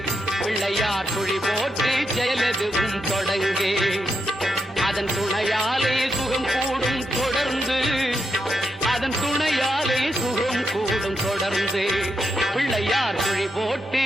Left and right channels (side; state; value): both; normal; correlation 0.83